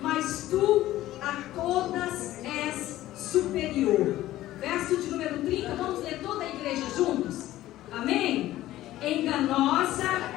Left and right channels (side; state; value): right; quieter; 15.0 dB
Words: mas tu a todas és superior. Verso de número 30, vamos ler toda a igreja juntos? Amém? Enganosa